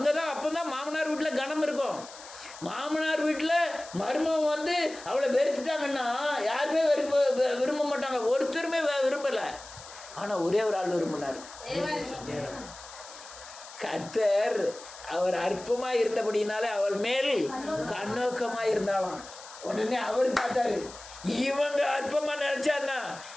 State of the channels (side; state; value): left; noise; hiss, 16 dB below the sound